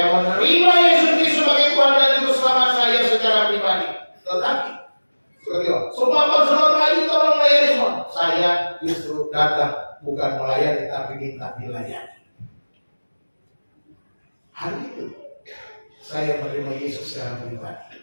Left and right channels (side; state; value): both; inverted; correlation -1.00